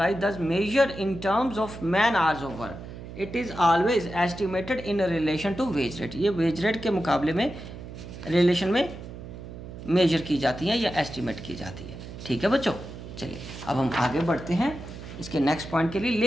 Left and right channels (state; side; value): noise; right; hum, 12 dB below the sound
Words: does measure in terms of man hours of work. It is always estimated in relation to wage rate. ये wage rate के मुकाबले में रिलेशन में मेजर की जाती है या एस्टिमेट की जाती है। ठीक है बच्चों, चलिए अब हम आगे बढ़ते हैं इसके नेक्स्ट पॉइंट के लिए।